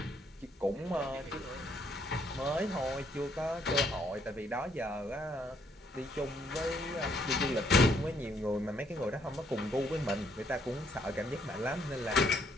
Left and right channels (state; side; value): normal; both; correlation 0.69